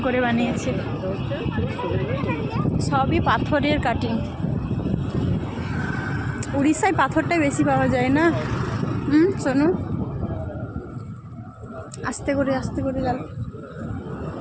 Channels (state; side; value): identical; both; correlation 1.00